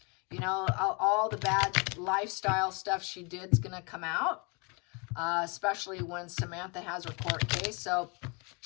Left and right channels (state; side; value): quieter; right; 31.6 dB